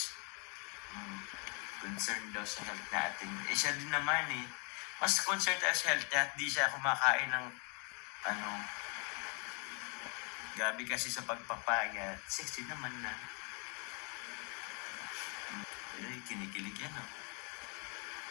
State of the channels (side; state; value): right; quieter; 35.9 dB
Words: Concerned daw sa health natin. Eh, siya din naman eh. Mas concerned tayo sa health at di siya kumakain ng gabi kasi sa pagpapayat. Sexy naman na. Ay, kinikilig yan oh.